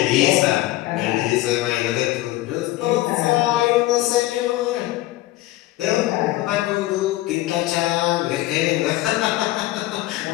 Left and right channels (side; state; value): right; quieter; 16.9 dB